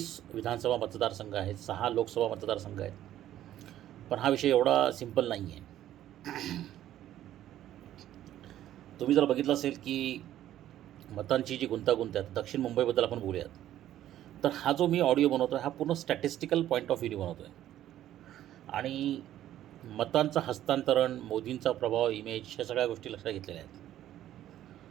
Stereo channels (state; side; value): quieter; left; 12.5 dB